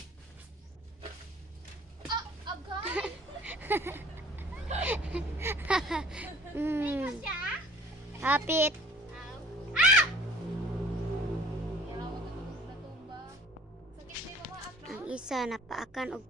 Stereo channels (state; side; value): normal; both; correlation 0.51